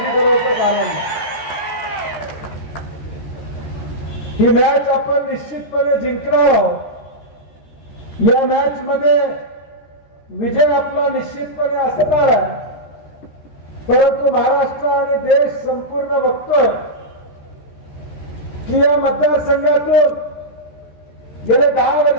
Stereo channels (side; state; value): right; late; 13 ms